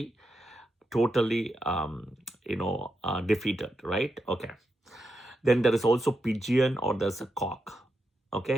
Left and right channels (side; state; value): both; normal; correlation 0.86